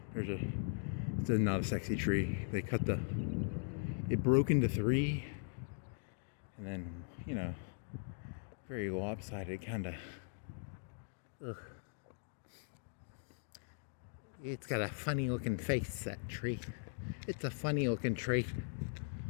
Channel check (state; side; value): silent; right; digital silence